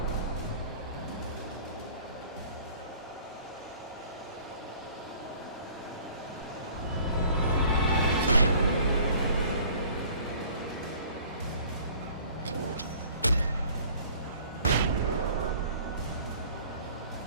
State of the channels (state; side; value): inverted; both; correlation -0.51